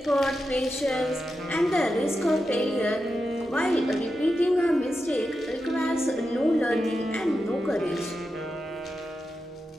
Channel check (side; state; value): both; normal; correlation 0.89